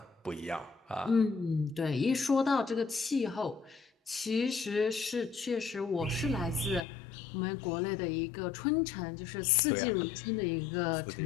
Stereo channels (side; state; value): right; drops out; at 6.9 s